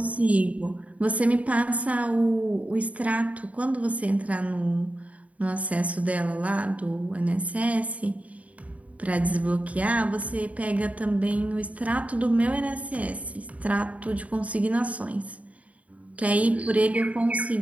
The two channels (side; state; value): left; late; 0.068 ms